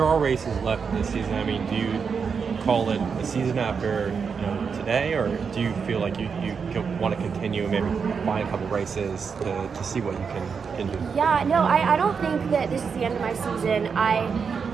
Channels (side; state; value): left; quieter; 5.9 dB